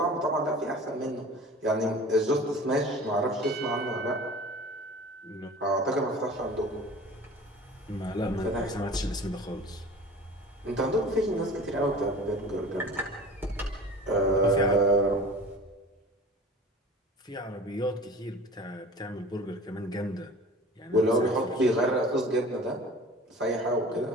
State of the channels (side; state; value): both; normal; correlation 0.41